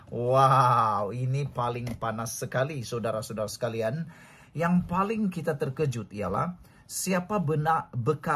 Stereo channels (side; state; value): both; identical; correlation 1.00